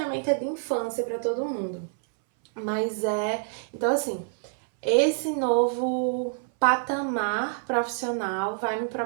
é de infância para todo mundo, mas então assim, esse novo patamar profissional vai me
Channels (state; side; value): silent; left; 60 dB below the other